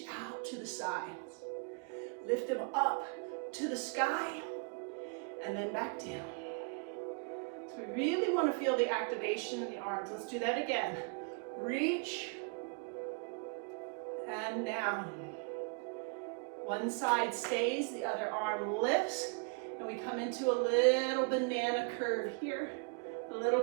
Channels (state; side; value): quieter; left; 35.8 dB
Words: out to the sides. Lift them up to the sky. And then back down. So we really want to feel the activation in the arms. Let's do that again. Reach. And down. One side stays, the other arm lifts. And we come into a little banana curve here, a little